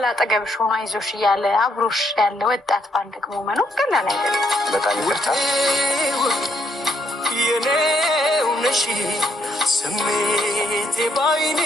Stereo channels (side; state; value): both; normal; correlation 0.73